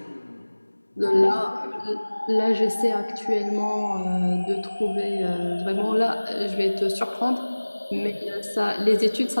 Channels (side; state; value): both; inverted; correlation -1.00